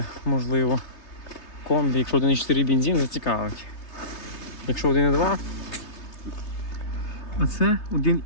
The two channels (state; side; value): late; right; 3.3 ms